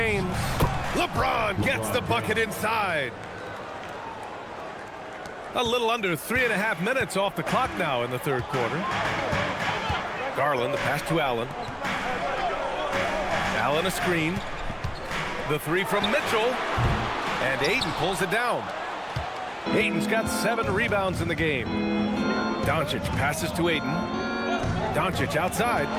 LeBron gets the bucket inside. A little under 3.5 minutes off the clock now in the third quarter. Garland, the pass to Allen. Allen a screen. The 3 from Mitchell. And Ayton pulls it down. Ayton's got 7 rebounds in the game. Doncic passes to Ayton. Doncic outside.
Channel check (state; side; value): identical; both; correlation 1.00